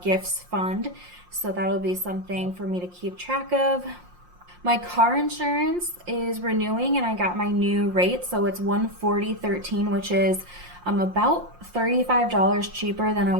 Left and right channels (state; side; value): late; left; 5.6 ms